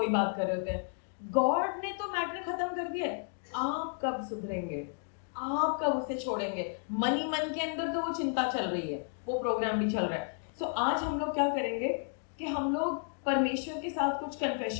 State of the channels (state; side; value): silent; right; 56 dB below the other